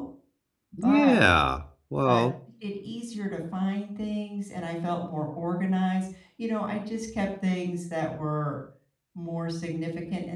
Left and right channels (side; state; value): both; identical; correlation 1.00